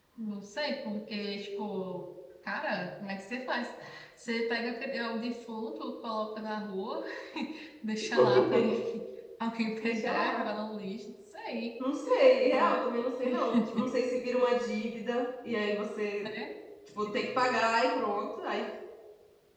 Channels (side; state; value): both; identical; correlation 1.00